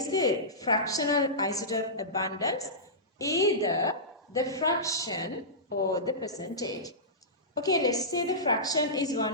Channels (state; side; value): normal; both; correlation -0.17